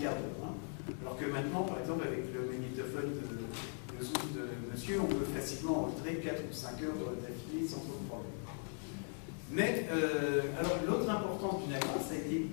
d'heure. Alors que maintenant, par exemple, avec le magnétophone de Zoom de monsieur, on peut facilement enregistrer 4 ou 5 heures d'affilée sans trop de problème. Mais, alors, l'autre importance du Nagra, ça a été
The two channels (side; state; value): right; silent; 52 dB below the other